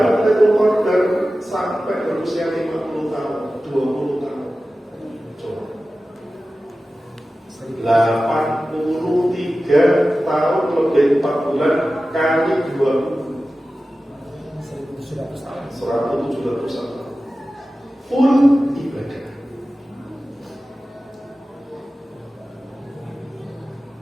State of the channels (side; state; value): both; normal; correlation 0.95